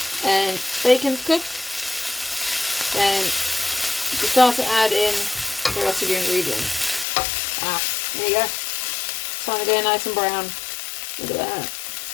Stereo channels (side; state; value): right; drops out; at 7.1 s